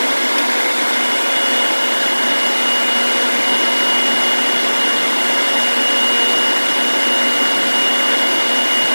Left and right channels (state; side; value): inverted; both; correlation -1.00